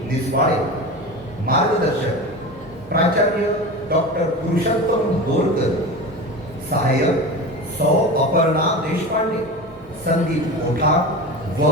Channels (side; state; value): both; normal; correlation 0.29